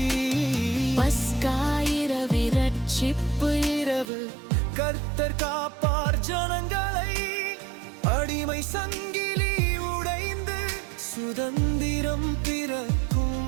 பஸ்கா இரவு, ரட்சிப்பு இரவு, கர்த்தர் காப்பார் ஜனங்களை. அடிமை சங்கிலி உடைந்து சுதந்திரம்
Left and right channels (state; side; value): drops out; left; at 4.0 s